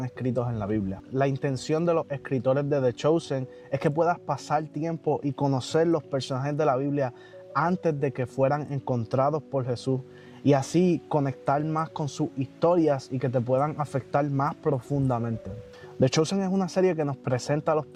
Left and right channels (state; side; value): identical; both; correlation 1.00